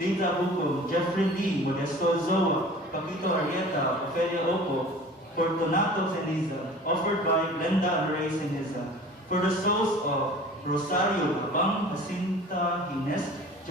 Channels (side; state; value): both; normal; correlation 0.43